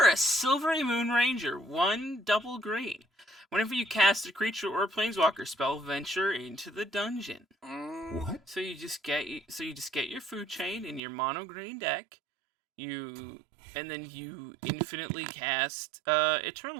Silvery Moon Ranger, 1 double green. Whenever you cast a creature or a planeswalker spell, venture into the dungeon. What? So you just get your food chain in your mono green deck. And then you infinitely cast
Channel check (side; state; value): left; drops out; at 11.0 s